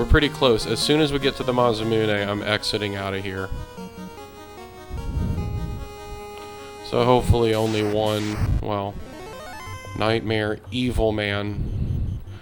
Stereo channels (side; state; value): both; identical; correlation 1.00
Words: pretty close. As soon as we get to the Masmune, I'm exiting out of here. So hopefully only one, well, Nightmare, Evil Man.